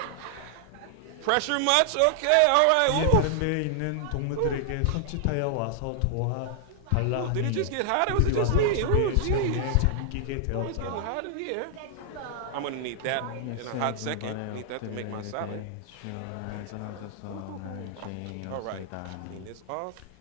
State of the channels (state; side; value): different; both; correlation 0.00